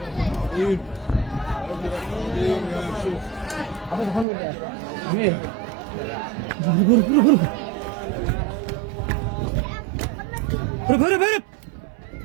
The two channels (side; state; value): left; drops out; at 4.2 s